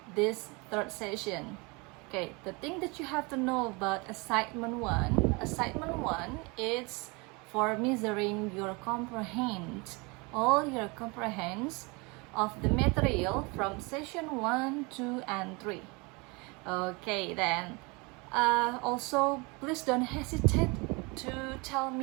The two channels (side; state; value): left; quieter; 27.8 dB